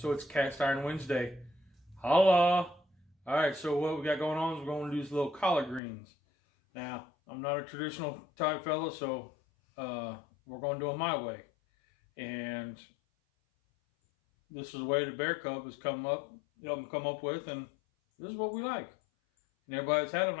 it's Cast Iron Wednesday. Holla! All right, so what we got going on is we're going to do these little collard greens. Now, I'm not a traditional type fella, so we're going to do it my way. And this is the way the Bear Cub has come up with, and this is what we like. And everybody that's had them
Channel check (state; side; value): drops out; right; at 5.8 s